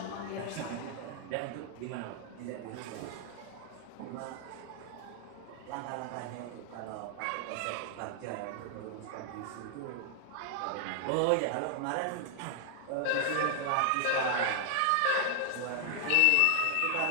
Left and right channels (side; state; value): both; different; correlation 0.00